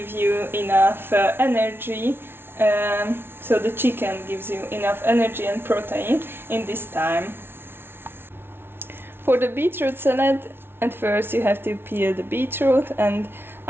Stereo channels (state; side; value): late; left; 0.11 ms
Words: you enough energy. So the chicken gives you enough energy and protein in this time. For the beetroot salad, at first you have to peel the beetroot and